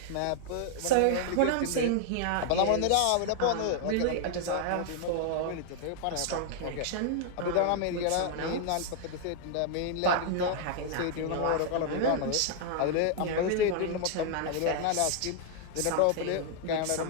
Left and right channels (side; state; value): both; different; correlation 0.00